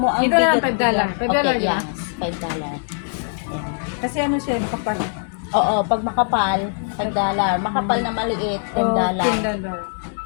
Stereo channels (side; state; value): right; silent; 64 dB below the other